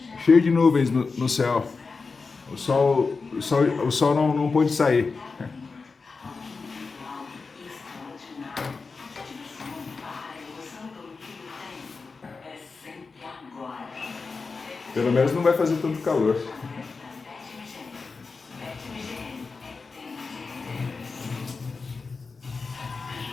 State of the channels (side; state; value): right; quieter; 4.4 dB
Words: Cheio de nuvens no céu. O sol não pôde sair. Pelo menos não vai fazer tanto calor.